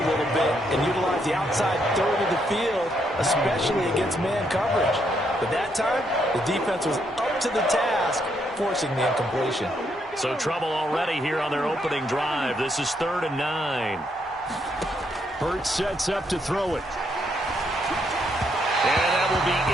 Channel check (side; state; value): both; normal; correlation 0.75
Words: little bit and utilize the outside third of the field, especially against man coverage. But that time, the defense was up to the task, forcing the incompletion. So trouble already here on their opening drive. This is 3rd and 9. Hurts sets up to throw it. And that will be